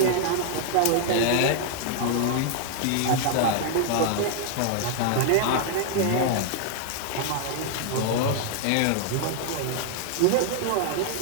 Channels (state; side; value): different; both; correlation 0.00